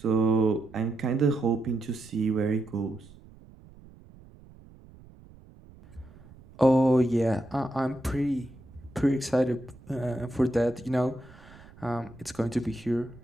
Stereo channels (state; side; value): noise; right; rumble, 22 dB below the sound